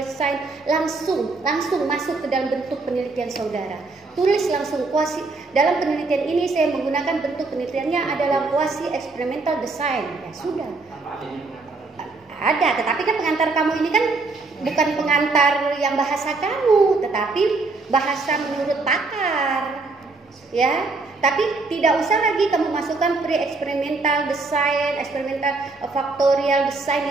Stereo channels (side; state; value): left; quieter; 3.7 dB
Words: langsung masuk ke dalam bentuk penelitian saudara. Tulis langsung kuasi. Dalam penelitian ini saya menggunakan bentuk penelitiannya adalah kuasi experimental design. Ya sudah. Tanpa adanya pengantaran. Ada, tetapi kan pengantar kamu ini kan bukan pengantar yang bahasa kamu, tetapi bahasa menurut pakar. Ya, tapi tidak usah lagi kamu masukkan pre-experimental design, experimental factorial